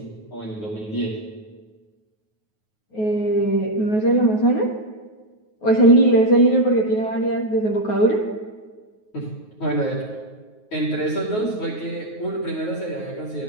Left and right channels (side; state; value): right; late; 9.4 ms